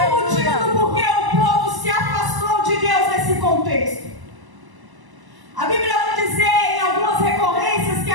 motivo do porquê o povo se afastou de Deus nesse contexto. A Bíblia vai dizer em algumas recorrências que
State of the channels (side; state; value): left; late; 1.0 ms